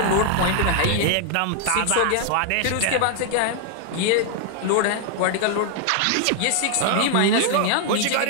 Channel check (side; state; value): both; different; correlation 0.00